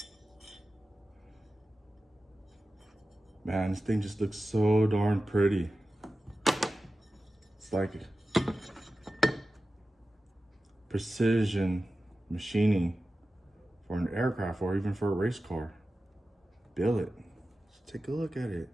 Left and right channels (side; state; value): both; normal; correlation 0.94